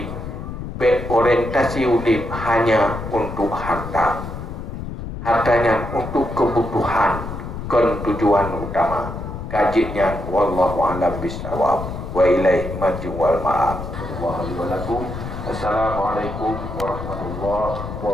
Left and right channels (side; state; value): left; noise; rumble, 8 dB below the sound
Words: berorientasi udip hanya untuk harta. Hartanya untuk kebutuhan, kan tujuan utama. Kajinya wallahu a'lam bishawab. Wa ilaihi marji wal ma'ab. Assalamualaikum warahmatullahi